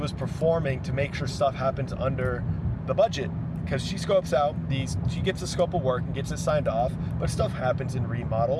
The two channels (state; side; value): identical; both; correlation 1.00